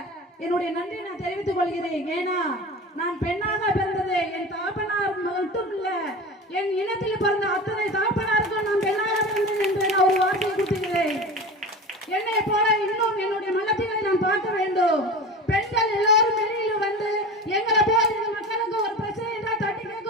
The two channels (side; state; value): both; normal; correlation 0.32